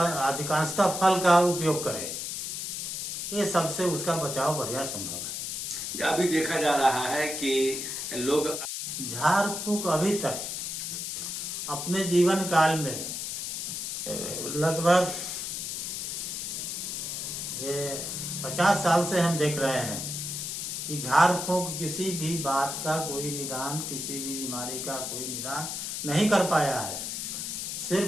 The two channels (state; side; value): noise; left; hiss, 4 dB below the sound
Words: फल का उपयोग करें। ये सबसे उसका बचाव बढ़िया संभव है। अभी देखा जा रहा है कि लोग झाड़ फूक अभी तक अपने जीवन काल में लगभग 50 साल से हम देख रहे हैं कि झाड़ फूक किसी भी बात का कोई निदान, किसी भी बीमारी का कोई निदान नहीं कर पाया है,